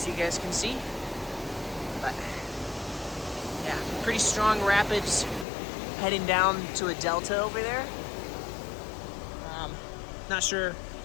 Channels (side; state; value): right; drops out; at 5.5 s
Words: you guys can see. But yeah, pretty strong rapids heading down to a delta over there. Not sure.